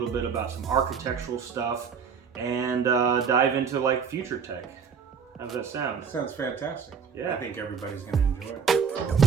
bit about some architectural stuff and dive into like future tech. How does that sound? Sounds fantastic. Yeah. I think everybody's going to enjoy it.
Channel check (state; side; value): quieter; left; 6.5 dB